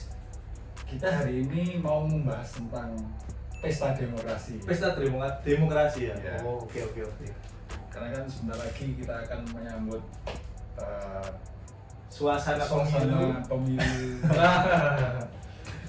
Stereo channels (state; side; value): identical; both; correlation 1.00